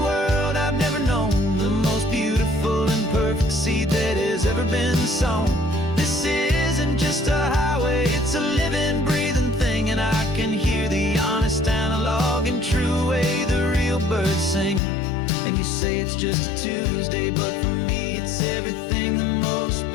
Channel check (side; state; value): right; drops out; at 14.8 s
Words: world I've never known, the most beautiful and perfect seed that has ever been sown. This isn't just a highway, it's a living, breathing thing, and I can hear the honest analog and true way the real birds sing. And you say it's just a Tuesday, but for me it's everything, the most